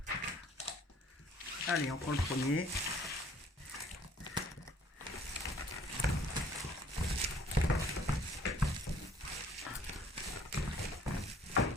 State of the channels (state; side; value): normal; both; correlation 0.57